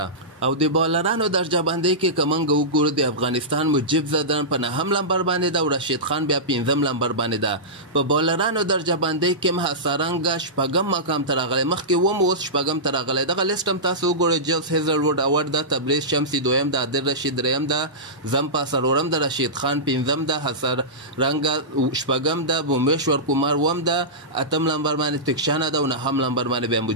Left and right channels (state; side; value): normal; both; correlation -0.16